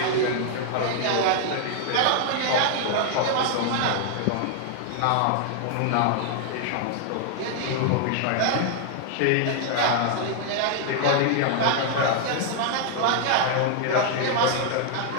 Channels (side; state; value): both; different; correlation 0.00